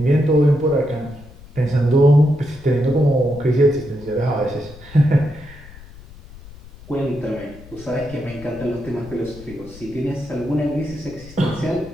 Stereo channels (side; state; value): left; noise; rumble, 19 dB below the sound